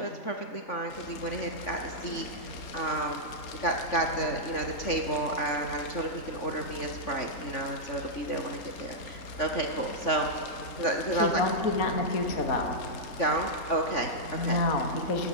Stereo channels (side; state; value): right; late; 3.5 ms